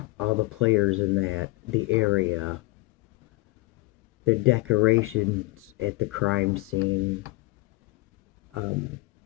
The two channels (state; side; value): quieter; right; 23.0 dB